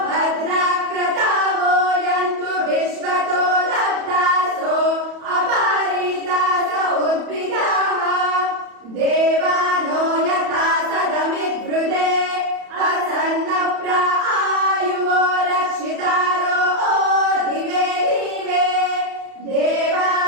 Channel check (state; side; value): late; left; 31 ms